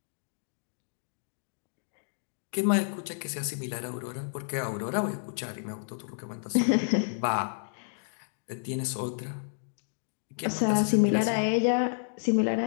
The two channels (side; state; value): right; silent; digital silence